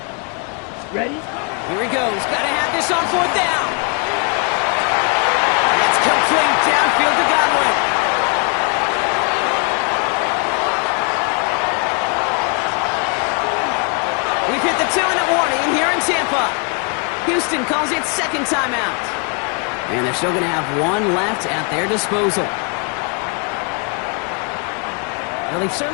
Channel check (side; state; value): right; quieter; 36.7 dB